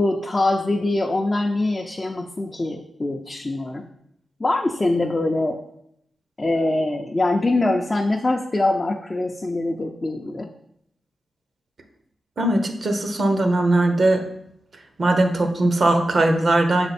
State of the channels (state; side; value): normal; both; correlation 0.92